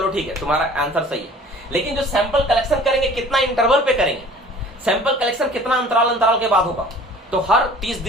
ठीक है तुम्हारा आंसर सही है, लेकिन जो सैंपल कलेक्शन करेंगे कितना इंटरवल पे करेंगे, सैंपल कलेक्शन कितना अंतराल के बाद होगा। तो हर 30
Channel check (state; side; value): normal; both; correlation 0.48